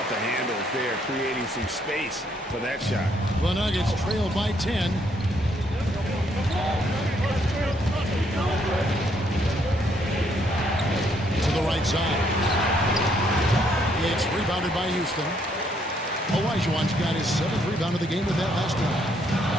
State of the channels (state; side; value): normal; both; correlation 0.70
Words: the handles there, creating some space for that shot? The Nuggets trail by 10. To the right side. It's rebounded by Houston. Olajuwon's got his 7th rebound of the game with that last one.